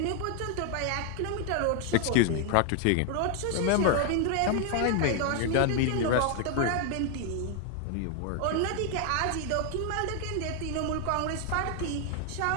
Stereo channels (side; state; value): both; different; correlation 0.00